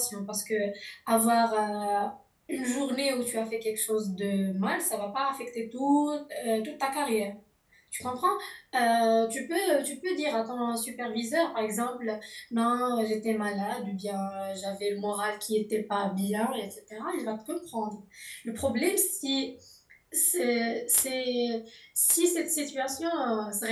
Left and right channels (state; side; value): identical; both; correlation 1.00